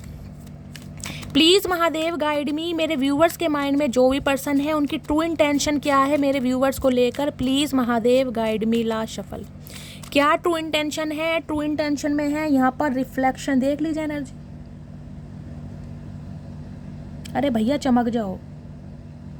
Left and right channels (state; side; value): identical; both; correlation 1.00